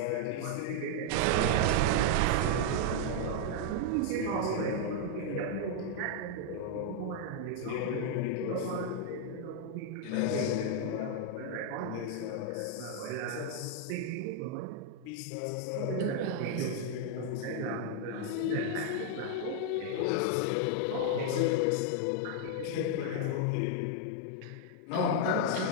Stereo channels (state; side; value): different; both; correlation 0.00